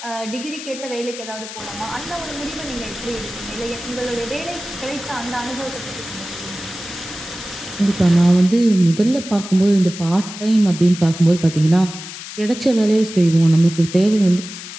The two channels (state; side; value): noise; left; hiss, 11 dB below the sound